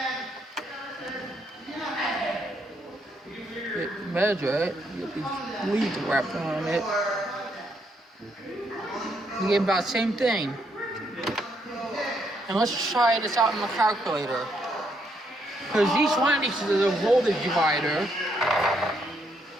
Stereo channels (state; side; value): normal; both; correlation 0.74